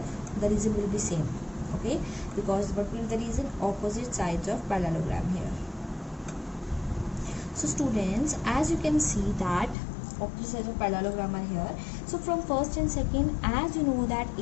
The reason will be same. Okay, because what will be the reason? Opposite sides of parallelogram here. So students, as you can see that opposite sides of parallelogram are here. So from first and second, as you know that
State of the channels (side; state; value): right; drops out; at 9.8 s